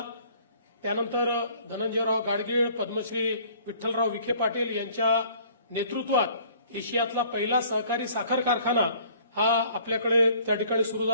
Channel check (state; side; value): inverted; both; correlation -0.55